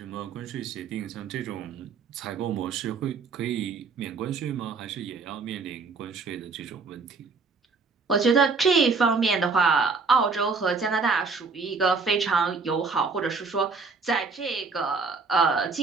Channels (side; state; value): left; quieter; 4.5 dB